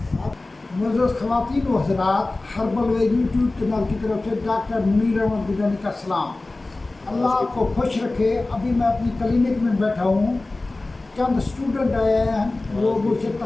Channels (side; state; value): right; quieter; 3.1 dB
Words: ख़वातीन व हज़रात, हर्बल वे YouTube channel की तरफ से डॉक्टर मुनीर अहमद गिलानी का सलाम। अल्लाह आपको खुश रखे। अभी मैं अपनी क्लिनिक में बैठा हूँ। चंद स्टूडेंट आए हैं, वो मुझसे